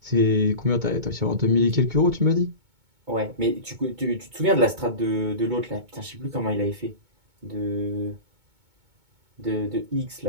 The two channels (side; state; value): left; late; 2.2 ms